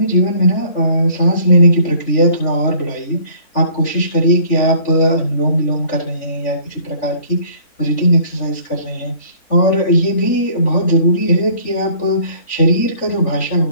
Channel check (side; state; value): right; late; 3.4 ms